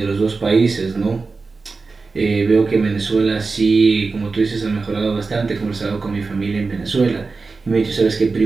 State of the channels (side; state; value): left; quieter; 4.2 dB